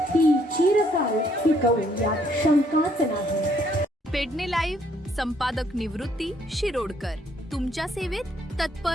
ती चिरकाल टिकवू यात शंकाच नाही. पेडणे लाईव्ह संपादक निवृत्ती शिरोडकर. तुमच्या सेवेत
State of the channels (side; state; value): both; normal; correlation 0.68